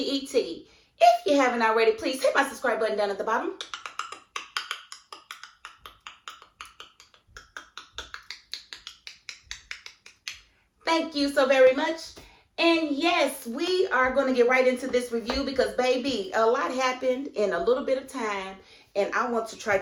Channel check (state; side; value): identical; both; correlation 1.00